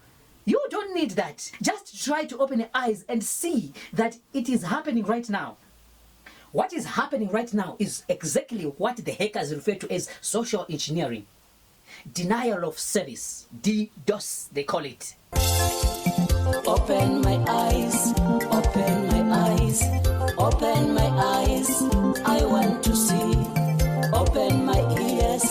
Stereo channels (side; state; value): both; identical; correlation 1.00